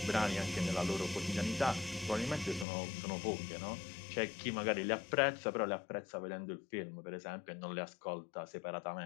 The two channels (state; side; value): drops out; right; at 2.7 s